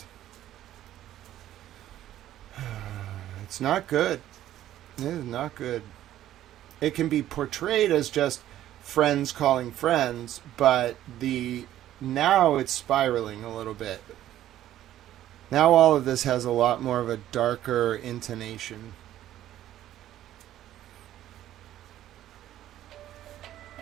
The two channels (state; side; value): quieter; left; 12.8 dB